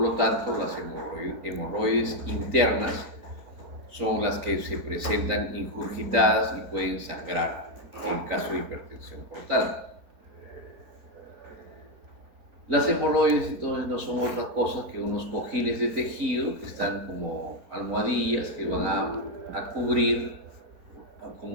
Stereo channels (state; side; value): late; left; 4.4 ms